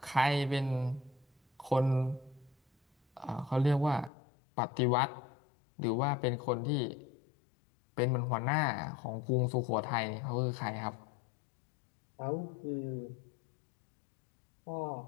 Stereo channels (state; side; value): drops out; right; at 4.1 s